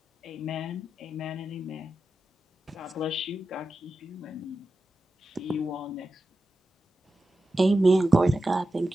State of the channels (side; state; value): both; normal; correlation 0.91